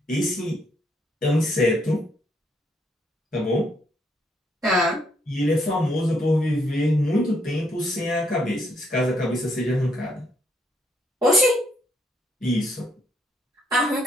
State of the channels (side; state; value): both; normal; correlation 0.73